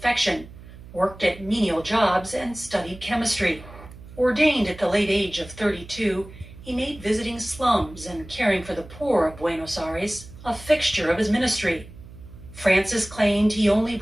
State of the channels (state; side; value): noise; right; hum, 18 dB below the sound